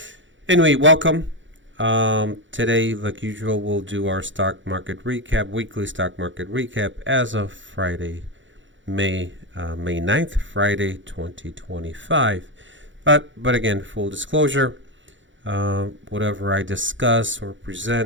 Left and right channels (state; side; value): late; left; 0.55 ms